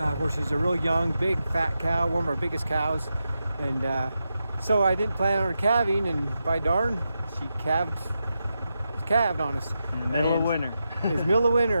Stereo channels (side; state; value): both; inverted; correlation -0.88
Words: Where she's a real young, big, fat cow, one of our biggest cows, and so I didn't plan on her calving, and by darn, she calved on us. In the middle of winter. It's middle of